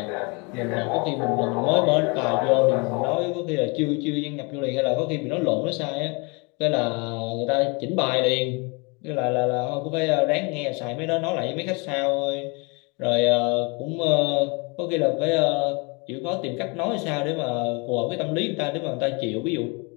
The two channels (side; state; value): right; quieter; 30.4 dB